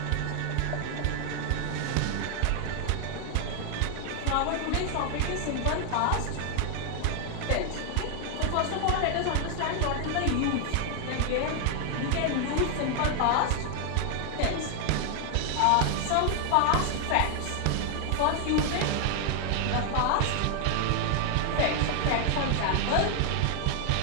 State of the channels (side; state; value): both; different; correlation 0.00